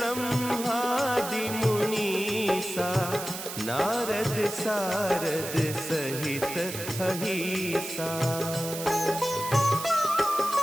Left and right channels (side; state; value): right; noise; hiss, 8 dB below the sound